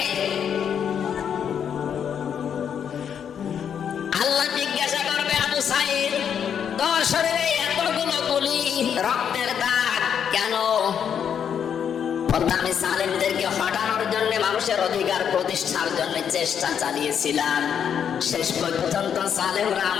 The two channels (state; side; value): quieter; right; 8.1 dB